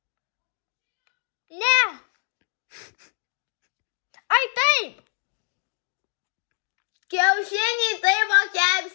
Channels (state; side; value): silent; right; 61 dB below the other